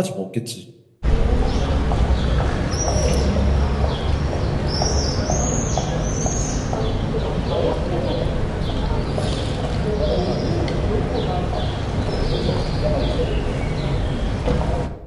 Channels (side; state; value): both; identical; correlation 1.00